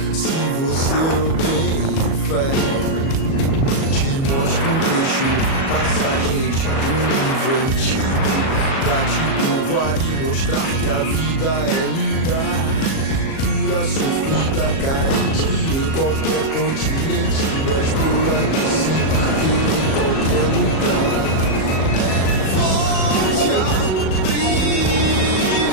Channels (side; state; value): right; late; 37 ms